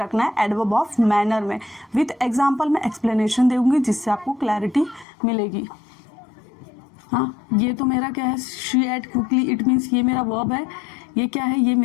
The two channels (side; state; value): right; drops out; at 5.1 s